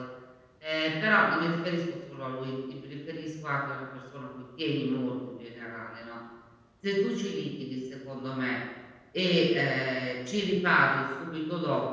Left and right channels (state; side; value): identical; both; correlation 1.00